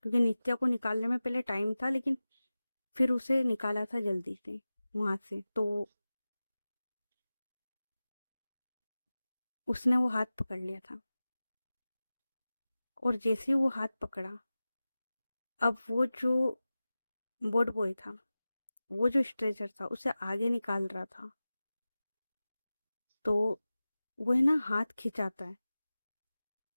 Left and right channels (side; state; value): both; inverted; correlation -0.96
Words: नित्या को निकालने में पहले टाइम था, लेकिन फिर उसे निकाला था जल्दी से वहां से। तो उसने वो हाथ पकड़ लिया था। और जैसे ही वो हाथ पकड़ा, अब वो जो बोर्ड बॉय था, वो जो स्ट्रेचर था उसे आगे निकाल रहा था। तो वो है ना हाथ खिंचाता है,